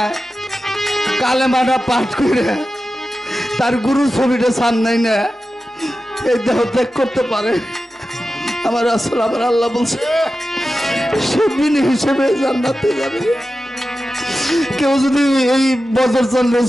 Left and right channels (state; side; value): normal; both; correlation 0.93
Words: কালেমাটা পাঠ করে তার গুরুর ছবিটা সামনে না এই দেহ ত্যাগ করতে পারে, আমার রাসূল আমার আল্লাহ বলছে সে বিনি হিসেবে জান্নাতে যাবে। কেউ যদি এই বদর চন্দ্রের